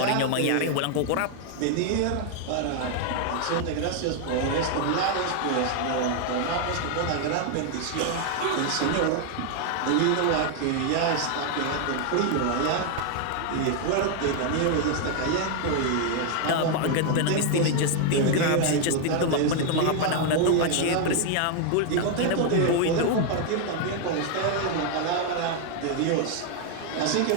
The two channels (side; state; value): both; different; correlation 0.00